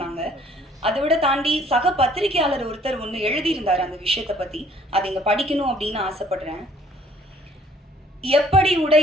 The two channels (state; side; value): normal; both; correlation 0.59